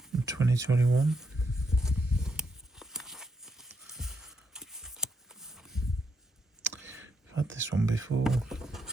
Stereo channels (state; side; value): normal; both; correlation 0.80